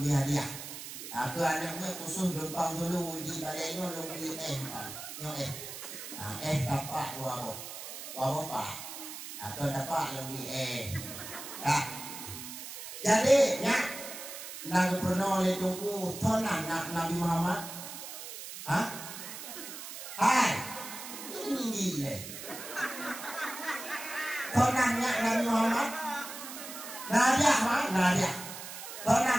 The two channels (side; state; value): right; noise; hiss, 10 dB below the sound